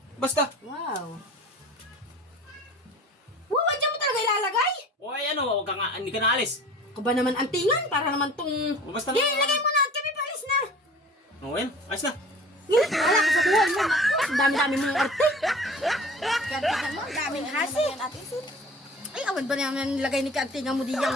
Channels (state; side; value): normal; both; correlation 0.43